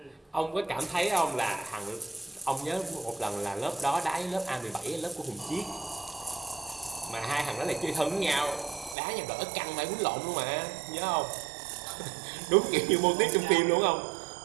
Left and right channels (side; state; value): left; drops out; at 9.0 s